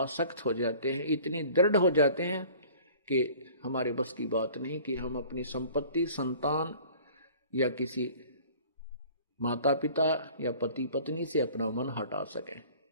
हो जाते हैं, इतनी दृढ़ हो जाते हैं कि हमारे बस की बात नहीं कि हम अपनी संपत्ति, संतान या किसी माता पिता या पति पत्नी से अपना मन हटा सकें।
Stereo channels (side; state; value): both; inverted; correlation -0.49